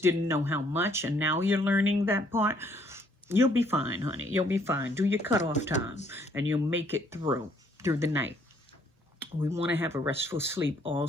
didn't know how much, and now you're learning that part, you'll be fine, honey. You'll be fine. Do your cutoff time, and you'll make it through the night. We want to have a restful sleep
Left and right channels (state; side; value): normal; both; correlation 0.65